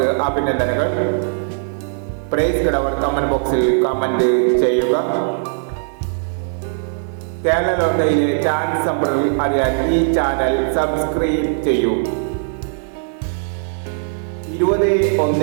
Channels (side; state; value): left; silent; 63 dB below the other